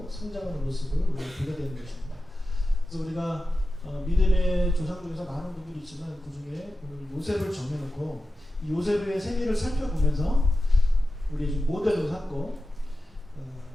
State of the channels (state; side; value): normal; both; correlation 0.93